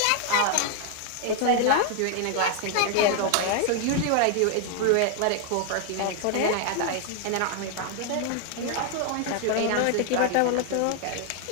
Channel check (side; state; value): both; different; correlation 0.00